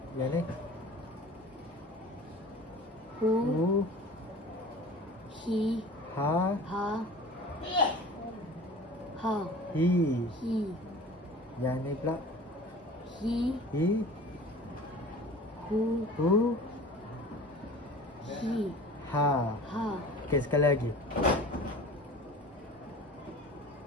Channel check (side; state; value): both; normal; correlation 0.41